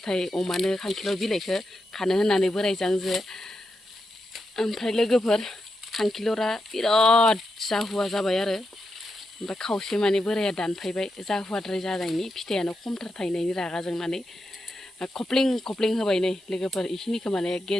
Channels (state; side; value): noise; right; hiss, 30 dB below the sound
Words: अमानो खांखिलर बिलाइखौ खानो होननानै बोरायजों ओमफ्राय लोगोफोर खांखिलरा बिराद जाहुवा जाबाय आरो ओमफ्राय खावसे माने बोराया दानफायबाय जाहुवाद्राय जानायनि फिथाइयानो खमथार थायनायनि रागा जोंनानै खप्लिं होबाय नै लोगोफोर इखिनिखौ माने